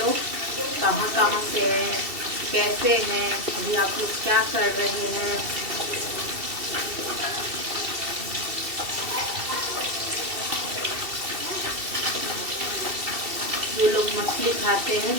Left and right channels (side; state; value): left; late; 2.7 ms